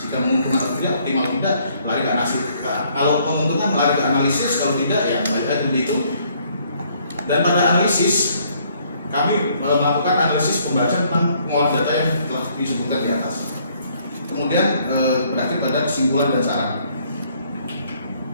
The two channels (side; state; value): both; inverted; correlation -0.65